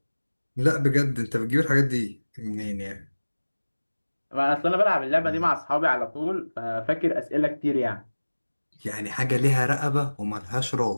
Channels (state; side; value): inverted; both; correlation -1.00